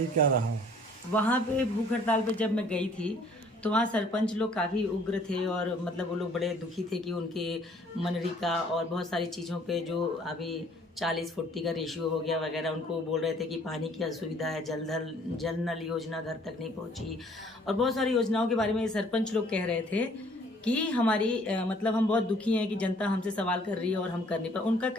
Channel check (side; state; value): both; normal; correlation 0.58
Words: क्या रहा? वहाँ पे भूख हड़ताल पे जब मैं गई थी तो वहाँ सरपंच लोग काफ़ी उग्र थे और मतलब वो लोग बड़े दुखी थे कि उनके मनरेगा और बहुत सारी चीज़ों पे जो अभी 40-40 का रेशियो हो गया वगैरह, उनको बोल रहे थे कि पानी की असुविधा है, जल नल योजना घर तक नहीं पहुँची और बहुत सारी योजनाओं के बारे में सरपंच लोग कह रहे थे कि हमारी मतलब हम बहुत दुखी हैं कि जनता हमसे सवाल कर रही है और हम कर नहीं पाए। उनका